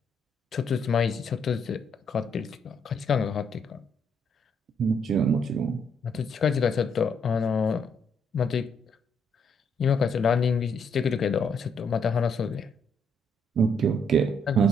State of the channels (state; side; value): normal; both; correlation 0.73